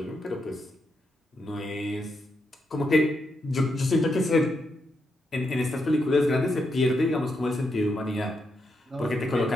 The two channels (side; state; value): both; normal; correlation 0.82